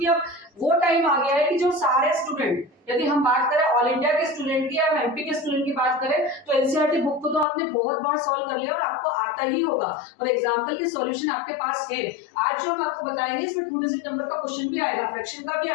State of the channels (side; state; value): right; drops out; at 7.5 s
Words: अब वो टाइम आ गया है कि जो सारे स्टूडेंट, यदि हम बात करें ऑल इंडिया के स्टूडेंट की या एमपी के स्टूडेंट की बात करें तो एनसीईआरटी बुक को तो आपने बहुत बार सॉल्व कर लिया और आपको आता ही होगा और एग्जाम्पल के सॉल्यूशन आपके पास है। आज जो हम आपको बताएंगे इसमें 2 डिजिट नंबर का क्वेश्चन भी आएगा, फ्रैक्शन का भी